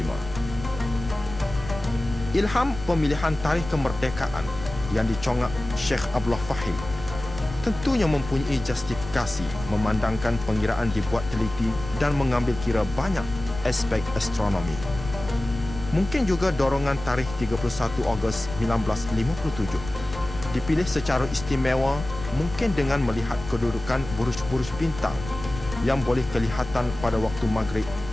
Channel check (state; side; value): noise; left; rumble, 12 dB below the sound